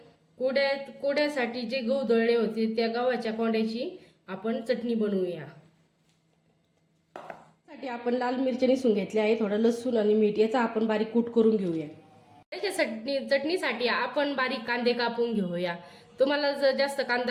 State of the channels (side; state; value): both; identical; correlation 1.00